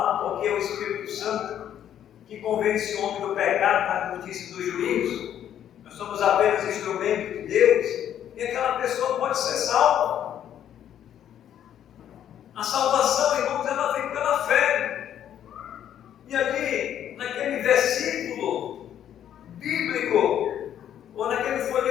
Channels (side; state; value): right; quieter; 10.3 dB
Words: porque é o Espírito Santo que convence o homem do pecado, da justiça e do juízo. Nós somos apenas instrumento de Deus, e aquela pessoa pode ser salva. A salvação, irmãos, ela vem pela fé. E ali, naquele versículo bíblico, ou naquele